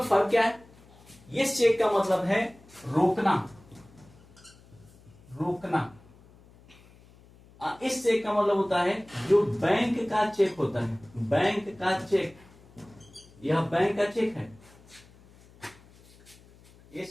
फर्क क्या है? ये चेक का मतलब है रोकना। इस चेक का मतलब होता है जो बैंक का चेक होता है, बैंक का चेक, यह बैंक का चेक है।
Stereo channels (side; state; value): left; noise; hum, 25 dB below the sound